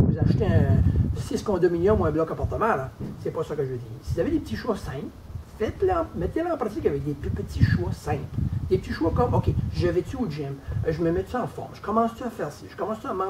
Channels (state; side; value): identical; both; correlation 1.00